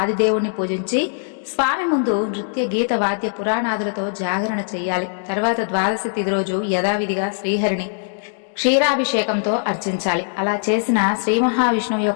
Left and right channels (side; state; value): right; silent; digital silence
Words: ఆదిదేవుణ్ణి పూజించి స్వామి ముందు నృత్య, గీత, వాద్య, పురాణాదులతో జాగరణ చెయ్యాలి. తర్వాత ద్వాదశి తిథి రోజు యథావిధిగా శ్రీహరిని క్షీరాభిషేకంతో అర్చించాలి. అలా చేసిన శ్రీ మహావిష్ణువు